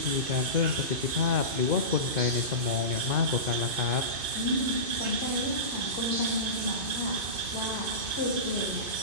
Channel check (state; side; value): late; left; 2.5 ms